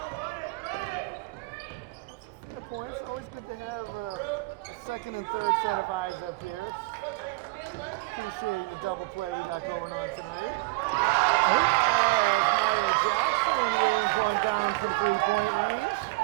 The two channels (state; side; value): quieter; left; 24.8 dB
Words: That's a fair point. It's always good to have a second and third set of eyes up here. It's appreciating the double play we got going on tonight. As Maya Jackson rains one down from three-point range.